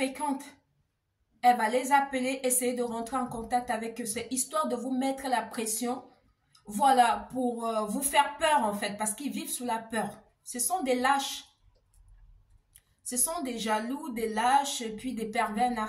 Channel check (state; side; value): identical; both; correlation 1.00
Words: elle va les appeler, essayer de rentrer en contact avec eux. C'est histoire de vous mettre la pression. Voilà, pour vous faire peur en fait, parce qu'ils vivent sous la peur. Ce sont des lâches. Ce sont des jaloux, des lâches, et puis des pervers